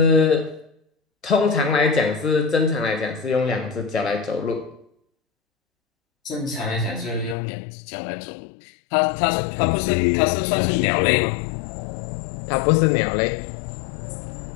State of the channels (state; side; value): drops out; right; at 7.4 s